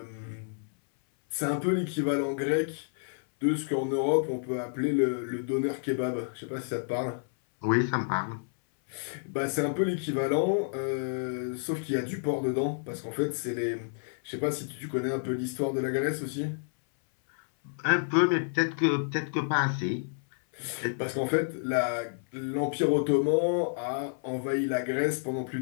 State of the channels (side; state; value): right; silent; 58 dB below the other